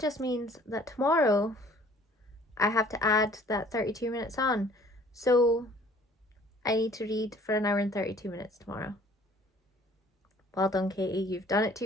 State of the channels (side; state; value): both; normal; correlation 0.54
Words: means that tomorrow I have to add that 32 minutes on. So I need to read for an hour and 32 minutes tomorrow. Well done, Katie. You've done it to